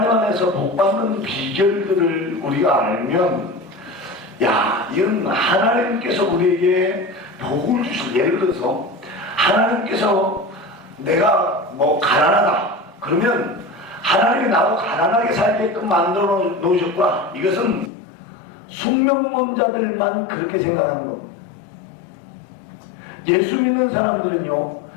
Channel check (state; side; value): drops out; right; at 17.9 s